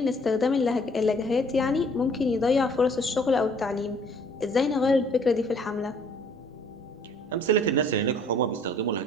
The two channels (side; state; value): both; normal; correlation 0.58